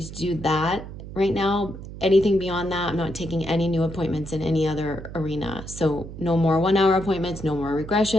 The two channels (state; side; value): noise; right; hum, 12 dB below the sound